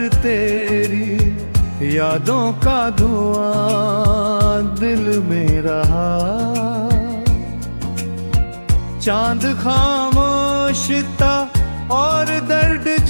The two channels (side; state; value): both; inverted; correlation -1.00